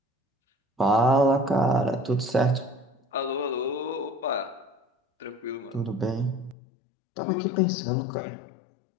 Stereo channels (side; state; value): right; drops out; at 6.6 s